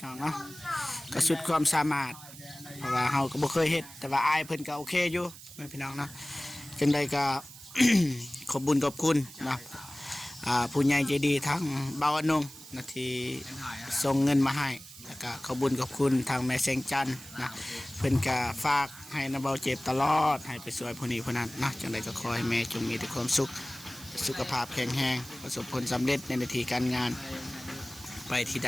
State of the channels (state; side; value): noise; right; hiss, 16 dB below the sound